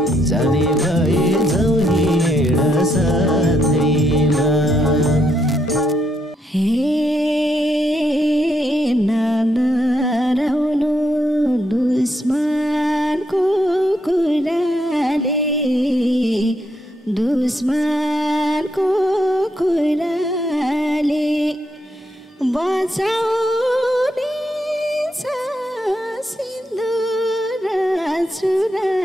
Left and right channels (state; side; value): normal; both; correlation 0.77